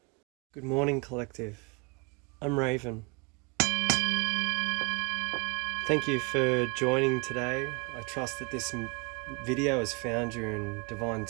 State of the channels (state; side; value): quieter; left; 29.9 dB